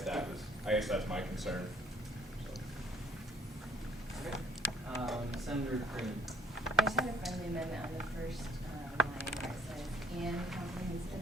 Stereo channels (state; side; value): normal; both; correlation 0.59